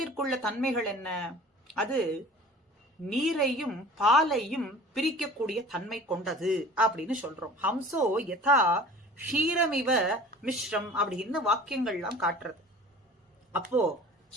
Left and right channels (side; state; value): both; normal; correlation 0.43